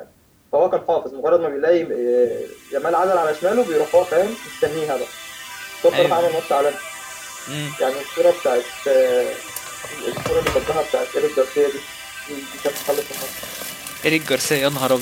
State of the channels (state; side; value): identical; both; correlation 1.00